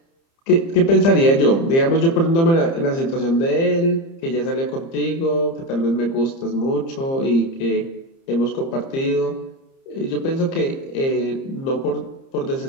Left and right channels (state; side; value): late; right; 30 ms